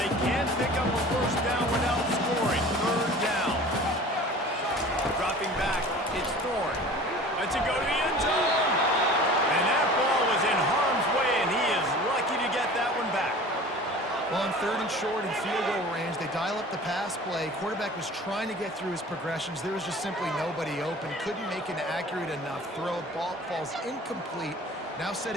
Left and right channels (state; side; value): normal; both; correlation 0.42